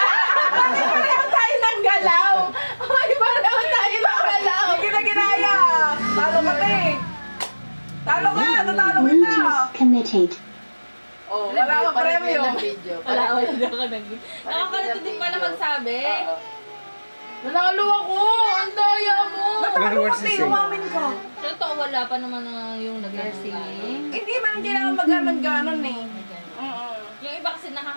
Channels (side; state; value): both; inverted; correlation -1.00